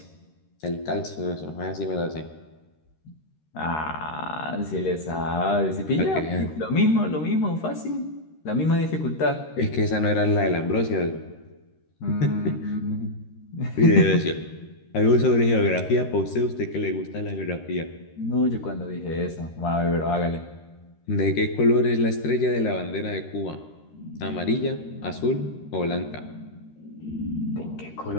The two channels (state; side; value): late; right; 13 ms